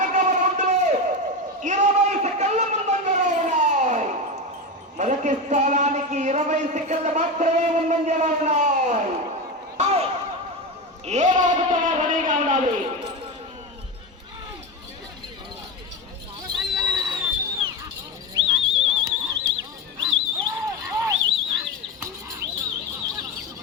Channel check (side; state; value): both; normal; correlation 0.19